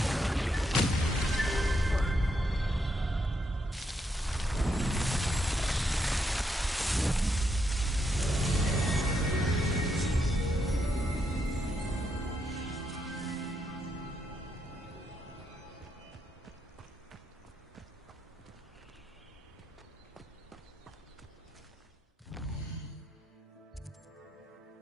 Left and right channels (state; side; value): normal; both; correlation 0.79